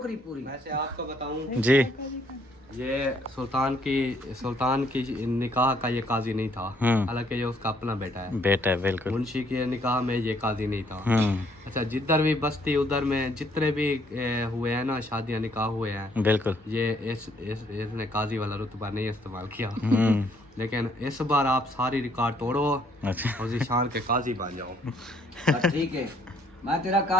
पूरी। वैसे आपको बताऊं, जी। ये सुल्तान की निकाह का ये काजी नहीं था, हालांकि ये उसका अपना बेटा है। बेटा है बिल्कुल। मुंशी के निकाह में ये काजी नहीं था। हम्म, अच्छा, जिधर भी बस्ती उधर में जितने भी हुए हैं ना शादियां निकाह हुए हैं, बिल्कुल। ये इसने काजी वाला रुतबा नहीं इस्तेमाल किया। हम्म, लेकिन इस बार आप सारी रिकॉर्ड तोड़ो अच्छा और जिशान के काजी बन जाओ। ठीक है, मैं तेरा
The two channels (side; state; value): both; normal; correlation 0.66